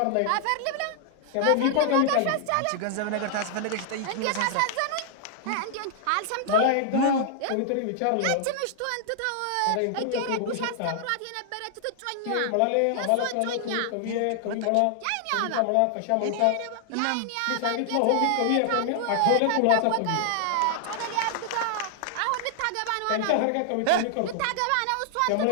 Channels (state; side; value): different; both; correlation -0.01